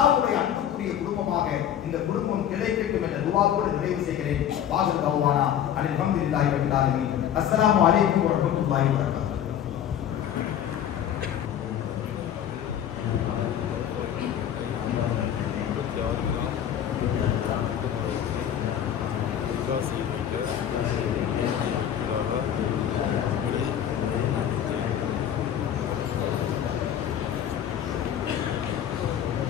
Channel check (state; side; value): quieter; right; 10.0 dB